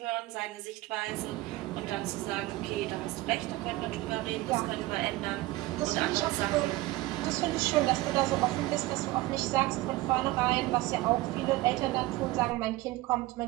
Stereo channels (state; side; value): quieter; left; 18.7 dB